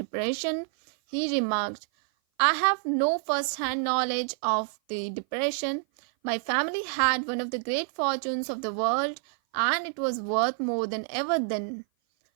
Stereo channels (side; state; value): left; silent; 56 dB below the other